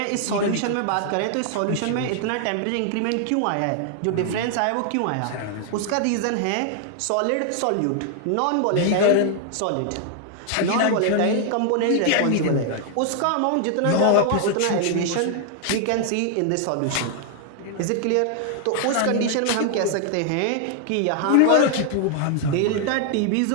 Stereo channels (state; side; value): different; both; correlation 0.00